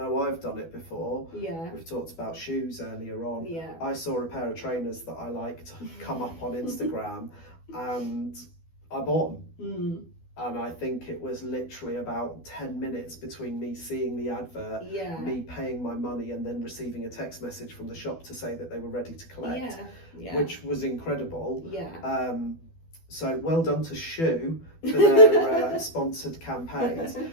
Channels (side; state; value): right; late; 12 ms